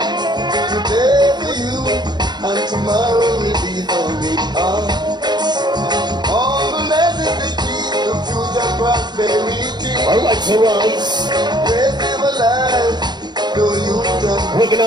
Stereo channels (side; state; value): left; late; 0.21 ms